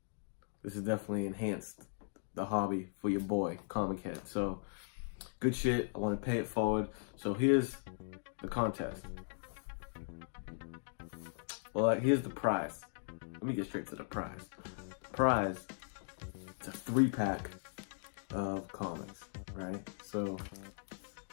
This has definitely enhanced the hobby for your boy, Comic Head. So, good shit. I want to pay it forward. So here's the contest. Well, here's the prize. Let me get straight to the prize. The prize, it's a 3-pack of comics, right? So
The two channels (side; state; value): right; silent; digital silence